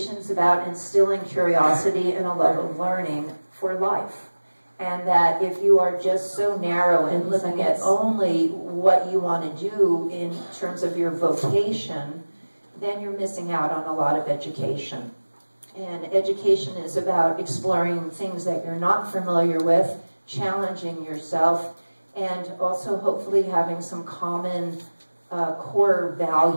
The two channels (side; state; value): both; inverted; correlation -1.00